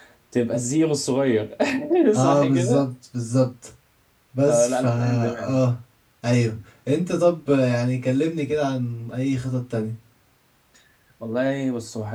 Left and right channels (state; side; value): identical; both; correlation 1.00